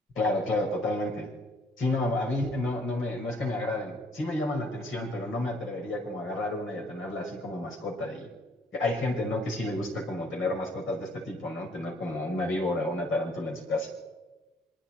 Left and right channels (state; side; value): normal; both; correlation 0.62